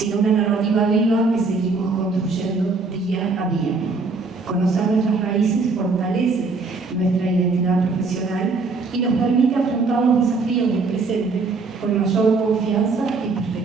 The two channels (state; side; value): quieter; left; 4.0 dB